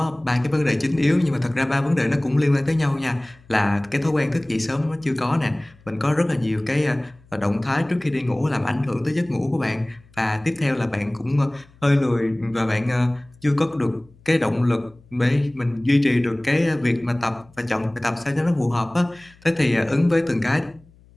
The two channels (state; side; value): noise; left; hum, 28 dB below the sound